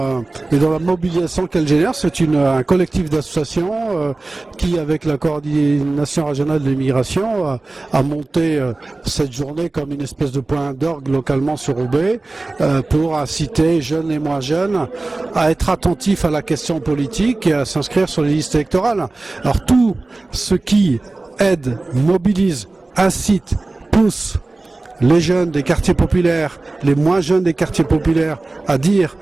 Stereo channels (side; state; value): left; quieter; 3.1 dB